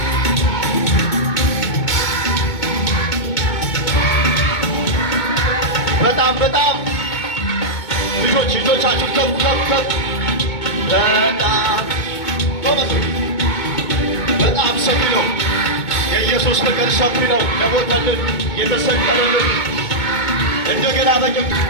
በጣም ልጆቻችሁ ከፍ ከፍ ከፍ። በጣም ሰፊ ነው የኢየሱስ ፍቅር፣ ሰፊ ነው። ለሞተልን የተሰቀለልን እንደገና በጭም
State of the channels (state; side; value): late; right; 2.2 ms